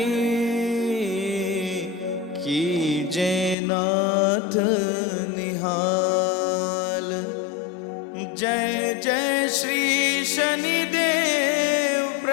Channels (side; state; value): right; drops out; at 3.6 s